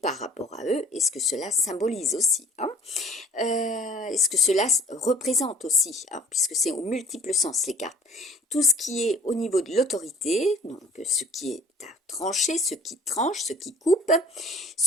rapport à eux, et ce que cela symbolise aussi, et ce que cela représente aussi, puisque c'est au multiple sens les cartes. Tout ce qui est au niveau de l'autorité, donc ce qui est à trancher, ce qui tranche, ce qui coupe,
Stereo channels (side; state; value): both; normal; correlation 0.51